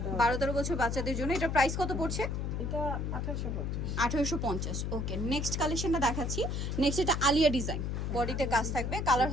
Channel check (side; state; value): left; noise; hum, 1 dB below the sound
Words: দাও। 12-13 বছর বাচ্চাদের জন্য। এটা প্রাইস কত পড়ছে? এটা 1850। 1850। ওকে, নেক্সট কালেকশনটা দেখাচ্ছি। নেক্সট এটা আলিয়া ডিজাইন, বডিতে কাজ থাকবে। কালার